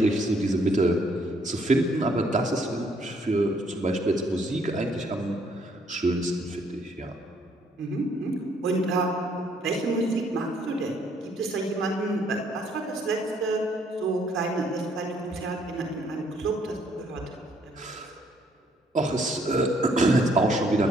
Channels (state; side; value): normal; both; correlation 0.67